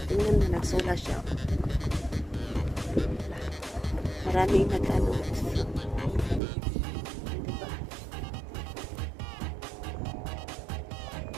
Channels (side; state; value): left; drops out; at 6.4 s